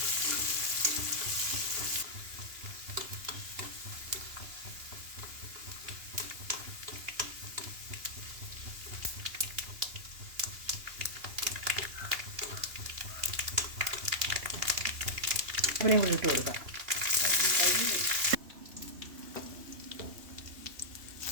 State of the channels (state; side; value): late; left; 3.0 ms